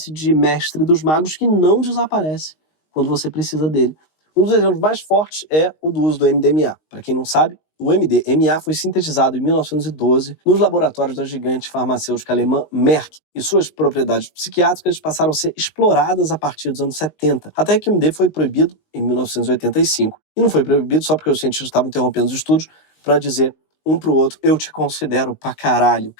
de mestre dos magos que não desaparece quando você precisa dele. Um dos exemplos mais fortes é o do uso do MDMA. Para quem não sabe, o MDMA foi sintetizado em 1912 nos laboratórios da gigante farmacêutica alemã Merck, e suas propriedades psiquiátricas passaram a ser exploradas a partir dos anos 70, até que o MD foi proibido em 1985. E não foi proibido só porque os cientistas estavam interrompendo os estudos para dizer um para o outro, eu te considero pra caralho,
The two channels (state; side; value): late; right; 19 ms